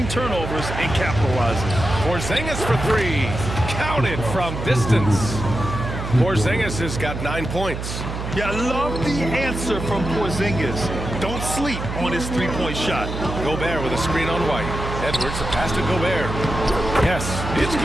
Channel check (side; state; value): right; noise; hum, 6 dB below the sound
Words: turnovers and capitalizing. Porzingis for 3. Counted from distance. Porzingis has got 9 points. Yeah, I love the answer from Porzingis. Don't sleep on his 3-point shot. Gobert with a screen on White. Edwards, a pass to Gobert. Yes, it's